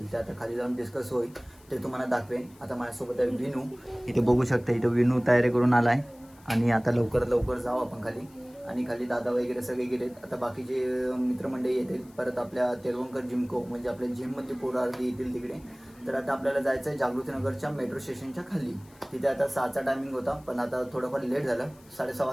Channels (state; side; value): noise; left; hiss, 28 dB below the sound